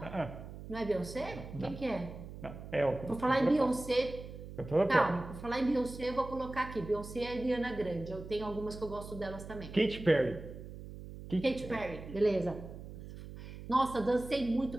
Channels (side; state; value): right; noise; hum, 12 dB below the sound